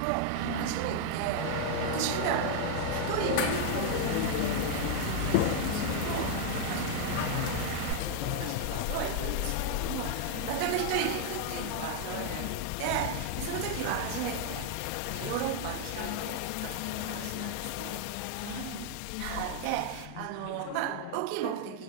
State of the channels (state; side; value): different; both; correlation 0.00